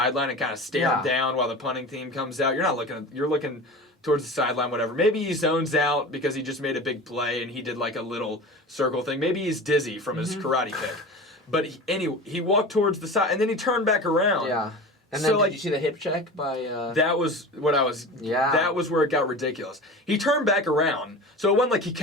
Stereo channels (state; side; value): normal; both; correlation 0.33